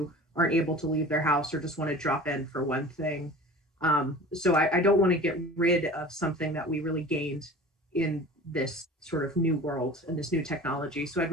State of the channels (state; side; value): normal; both; correlation 0.40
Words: aren't able to leave their house or just want to drop in for one thing. So I don't want to get rid of something that we really gained in this sort of new world and this new technology. So I'd